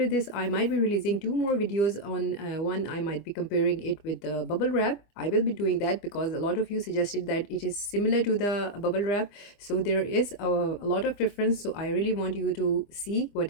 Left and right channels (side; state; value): right; late; 25 ms